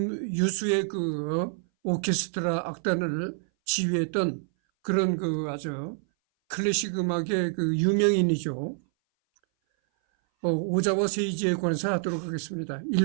그 오케스트라 악단을 지휘했던 그런 그 아주 클래식 음악의 그 유명인이죠. 오자와 세이지에 관해서 하도록 하겠습니다.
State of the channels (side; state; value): left; silent; 58 dB below the other